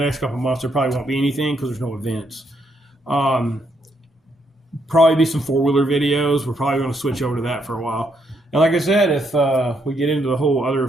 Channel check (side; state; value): both; normal; correlation 0.75